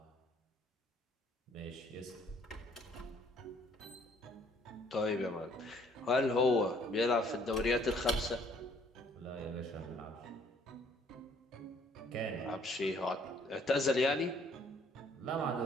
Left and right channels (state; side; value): normal; both; correlation 0.62